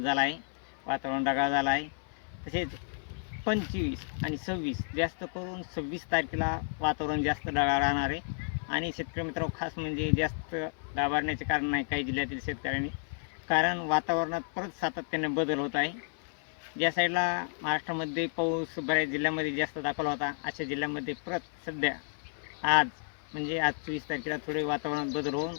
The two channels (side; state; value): right; silent; 57 dB below the other